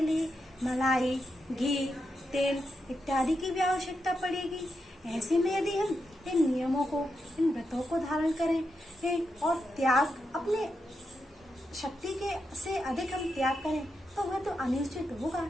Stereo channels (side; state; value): both; normal; correlation 0.85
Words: लिए मलाई, घी, तेल इत्यादि की भी आवश्यकता पड़ेगी। ऐसे में यदि हम इन नियमों को, इन व्रतों को धारण करें और त्याग, अपने शक्ति के से अधिक हम त्याग करें तो वह तो अनुचित होगा।